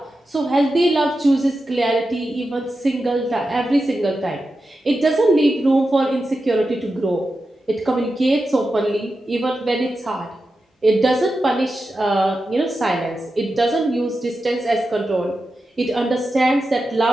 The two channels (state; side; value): normal; both; correlation 0.90